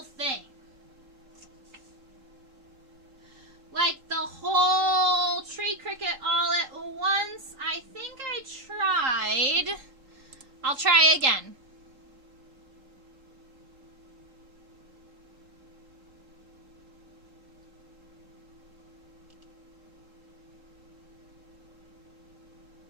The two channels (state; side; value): late; left; 3.7 ms